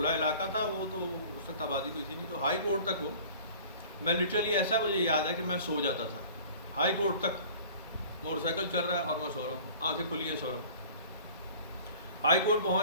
علاقہ تھا وہ، تو اس وقت آبادی کوئی تھی نہیں، تو ہائی کورٹ تک ہو، میں لٹرلی ایسا مجھے یاد ہے کہ میں سو جاتا تھا ہائی کورٹ تک، موٹر سائیکل چل رہا ہے اور میں سو رہا ہوں، آنکھیں کھلی ہیں، سو رہا ہوں۔ ہائی کورٹ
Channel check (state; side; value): inverted; both; correlation -0.46